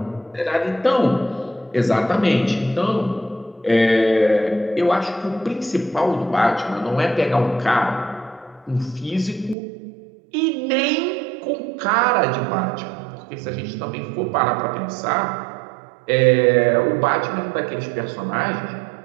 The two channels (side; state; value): left; drops out; at 9.6 s